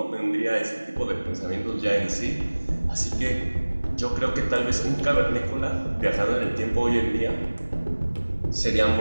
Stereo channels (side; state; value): both; inverted; correlation -1.00